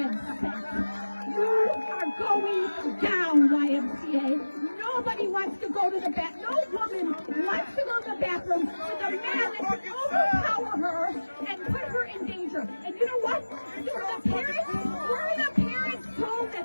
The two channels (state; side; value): inverted; both; correlation -1.00